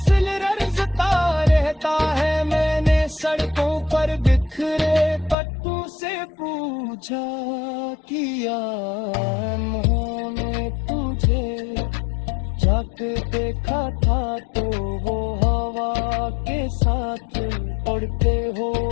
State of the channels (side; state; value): right; drops out; at 5.4 s